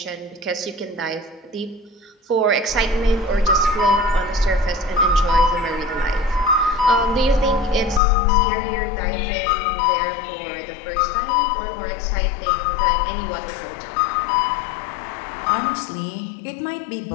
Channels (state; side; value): drops out; right; at 8.0 s